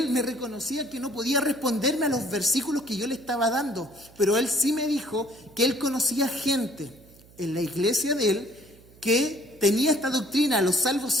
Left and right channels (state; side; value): noise; right; hum, 25 dB below the sound